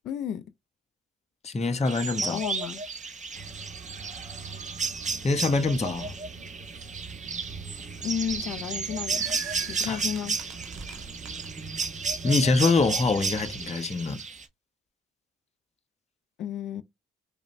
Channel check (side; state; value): both; normal; correlation 0.65